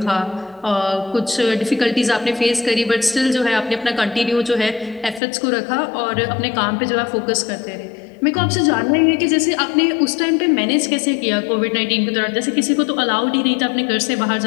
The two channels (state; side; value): drops out; right; at 5.2 s